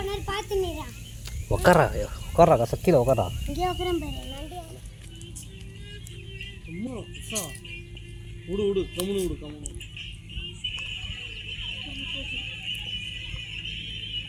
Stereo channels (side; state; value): both; identical; correlation 1.00